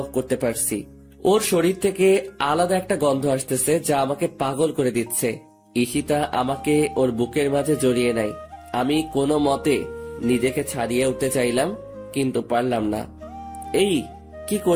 করতে পারছি। ওর শরীর থেকে আলাদা একটা গন্ধ আসতেছে, যা আমাকে পাগল করে দিচ্ছে। ঈশিতা আমাকে ওর বুকের মাঝে জড়িয়ে নেয়। আমি কোনো মতে নিজেকে ছাড়িয়ে উঠতে চাইলাম, কিন্তু পারলাম না। এই কি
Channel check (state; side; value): identical; both; correlation 1.00